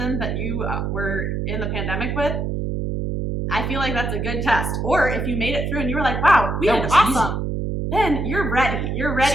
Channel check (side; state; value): right; noise; hum, 2 dB below the sound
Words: that you were in the pandemic with, I feel like that's a good test. Or if you made it through and you were like, "Wow, we did awesome." Easy. Then you're ready. You're ready.